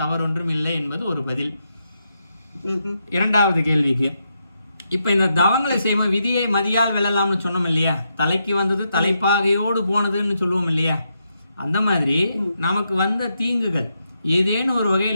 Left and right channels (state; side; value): inverted; both; correlation -0.82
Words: இல்லை என்பது ஒரு பதில். இரண்டாவது கேள்விக்கு, இப்போ இந்த தவங்களை செய்வோம், விதியை மதியால் வெல்லலாம்னு சொன்னோம் இல்லையா? தலைக்கு வந்தது தலைப்பாகையோடு போனதுன்னு சொல்லுவோம் இல்லையா? அந்த மாதிரி நமக்கு வந்த தீங்குகள் ஏதேனும் ஒரு